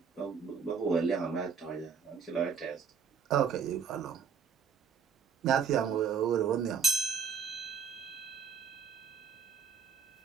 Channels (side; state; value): left; quieter; 6.4 dB